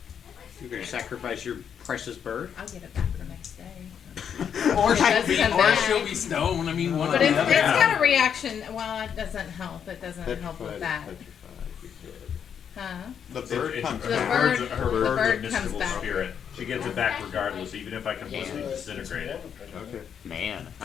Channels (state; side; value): quieter; right; 7.9 dB